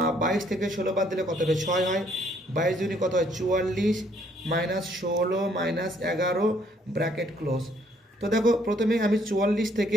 22 থেকে 16 বাদ দিলে কত হবে, 6 হয়, 22 দুগুণে কত হয় 44, মাইনাস 16 মাইনাস 11 ব্র্যাকেট ক্লোজ। তো দেখো প্রথমে আমি 44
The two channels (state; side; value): normal; both; correlation 0.66